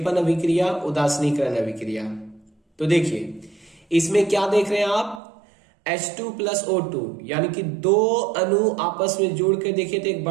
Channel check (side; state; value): left; drops out; at 5.2 s